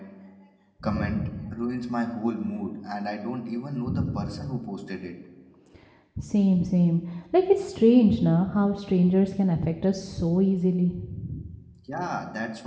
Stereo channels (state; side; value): identical; both; correlation 1.00